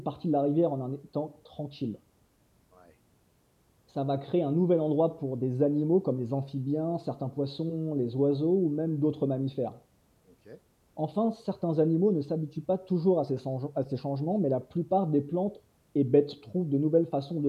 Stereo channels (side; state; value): both; identical; correlation 1.00